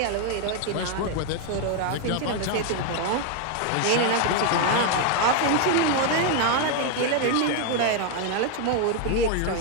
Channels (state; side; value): different; both; correlation 0.01